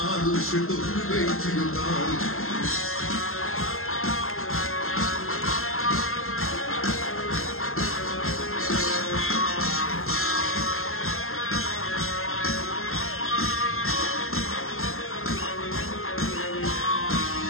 সে তো উড়বে চিরকাল।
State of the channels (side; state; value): right; late; 0.62 ms